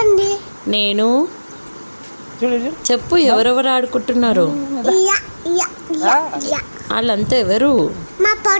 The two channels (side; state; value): both; inverted; correlation -1.00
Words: నేను చెప్పు, ఎవరెవరు ఆడుకుంటున్నారు? వాళ్ళంతా ఎవరు? మా